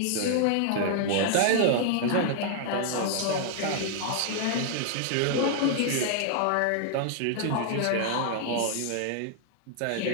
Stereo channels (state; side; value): different; both; correlation 0.00